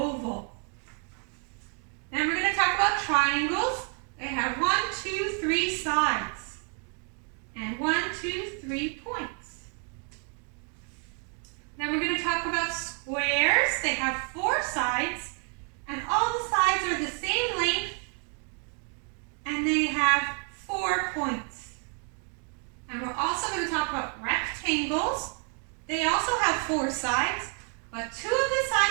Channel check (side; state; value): left; quieter; 38.8 dB